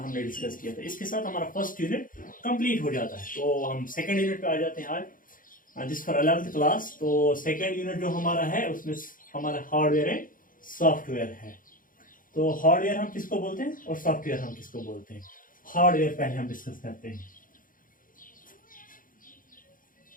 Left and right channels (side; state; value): right; late; 0.40 ms